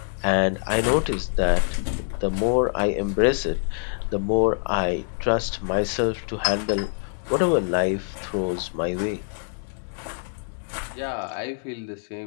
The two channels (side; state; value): right; silent; digital silence